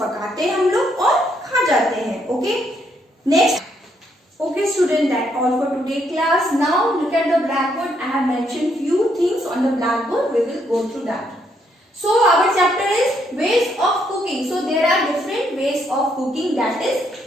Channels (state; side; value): normal; both; correlation 0.74